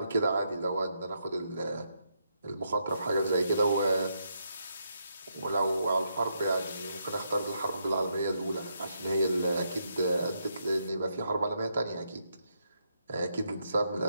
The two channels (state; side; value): inverted; both; correlation -0.79